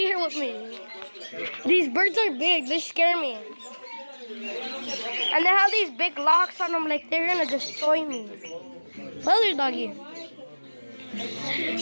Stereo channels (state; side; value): inverted; both; correlation -1.00